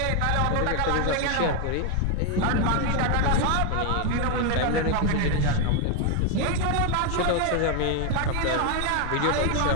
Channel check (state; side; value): different; both; correlation 0.01